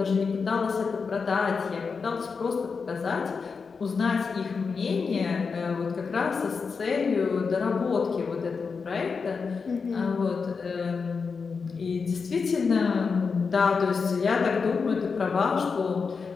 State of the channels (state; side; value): quieter; right; 5.2 dB